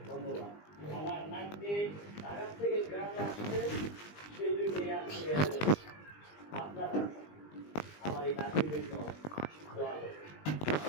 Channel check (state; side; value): late; right; 20 ms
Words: ধন্যবাদ। আমার নামটি ঢাকা থেকে গ্রামে আসছে, সেই জন্য আপনারা আমার এই নাতির জন্য দোয়া করবেন।